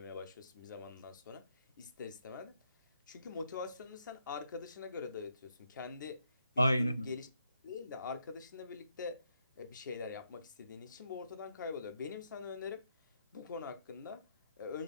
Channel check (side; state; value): both; inverted; correlation -0.77